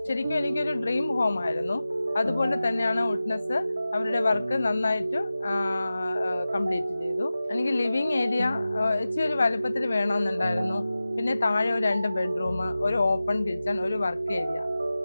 ശരിക്കും എനിക്കൊരു ഡ്രീം ഹോം ആയിരുന്നു. അതുപോലെ തന്നെയാണ് വുഡ്നെസ് അവരുടെ വർക്ക് നന്നായിട്ട് കംപ്ലീറ്റ് ചെയ്തു. എനിക്ക് ലിവിങ് ഏരിയ ഇച്ചിരി ഒരു വലുപ്പത്തിൽ വേണമെന്നുണ്ടായിരുന്നു. പിന്നെ താഴെ ഒരു 2 ബെഡ്റൂം, ഒരു ഓപ്പൺ കിച്ചൺ, ഒരു വർക്ക് ഏരിയ,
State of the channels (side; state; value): both; inverted; correlation -0.95